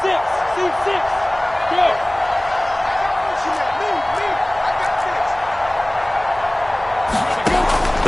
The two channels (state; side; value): noise; right; hum, 21 dB below the sound